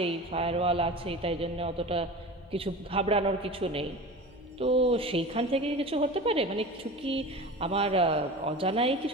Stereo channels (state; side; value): noise; left; hum, 27 dB below the sound